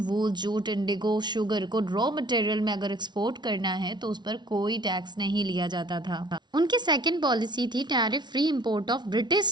jute, Indigo, sugar को raw material में अगर export करना है तो उस पर कोई टैक्स नहीं लिया जाता था। उनकी सेकेंड पॉलिसी थी tariff free import of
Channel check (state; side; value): late; left; 0.21 ms